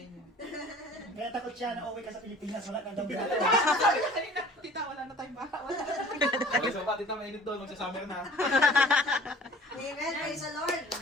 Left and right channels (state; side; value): normal; both; correlation 0.47